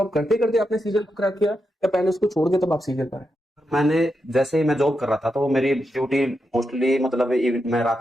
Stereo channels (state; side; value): normal; both; correlation 0.86